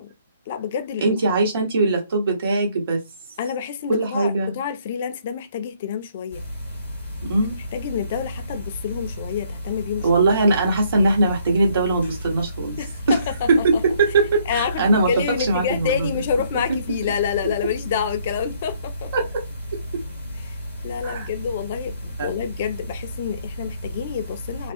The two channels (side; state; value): both; inverted; correlation -0.65